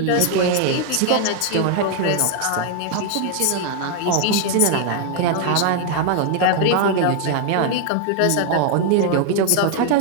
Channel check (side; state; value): both; different; correlation 0.00